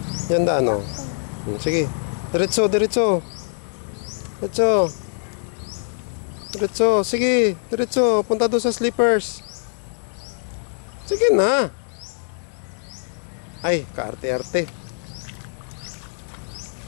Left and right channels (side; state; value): right; silent; digital silence